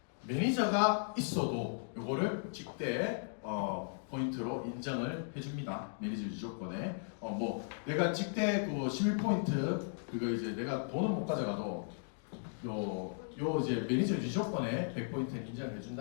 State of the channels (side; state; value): right; silent; digital silence